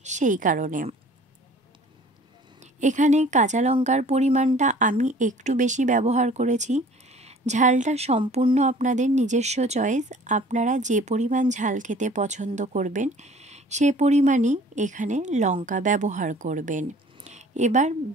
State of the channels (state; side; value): normal; both; correlation 0.50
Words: সেই কারণে। এখানে কাঁচা লঙ্কার পরিমাণটা আমি একটু বেশি ব্যবহার করেছি। ঝালটা সম্পূর্ণ আপনাদের নিজস্ব চয়েস, আপনারা যে পরিমাণ ঝাল খেতে পছন্দ করবেন সে পরিমাণই এখানে লঙ্কা ব্যবহার করবেন। এবার